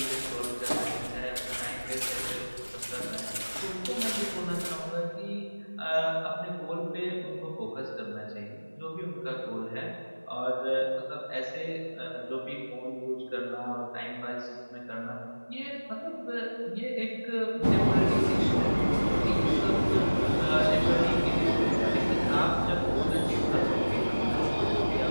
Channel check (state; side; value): inverted; both; correlation -1.00